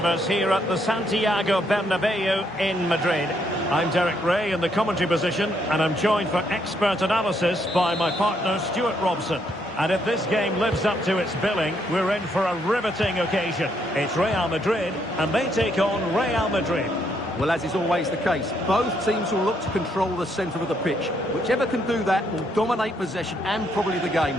us here at the Santiago Bernabéu in Madrid. I'm Derek Ray in the commentary position, and I'm joined for expert analysis by my partner Stuart Robson. And if this game lives up to its billing, we're in for a riveting occasion. It's Real Madrid, and they take on Real Madrid. Well, as is always the case, both teams will look to control the centre of the pitch. Whichever can do that will dominate possession and probably the game.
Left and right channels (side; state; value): both; normal; correlation 0.73